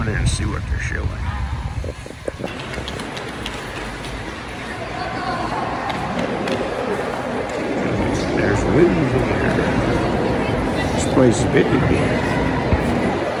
in there and see what they're showing. There's movies here. This place is big again.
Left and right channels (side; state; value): both; identical; correlation 1.00